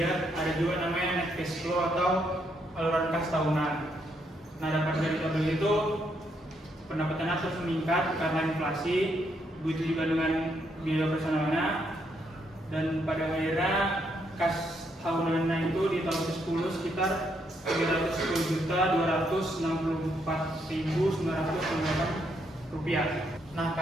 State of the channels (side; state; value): both; normal; correlation 0.75